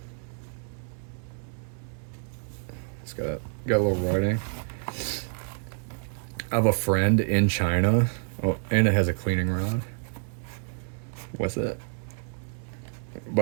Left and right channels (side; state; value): left; silent; digital silence